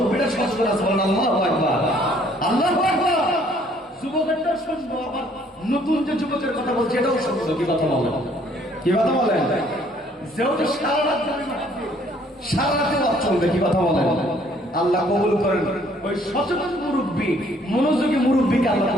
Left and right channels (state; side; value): normal; both; correlation 0.62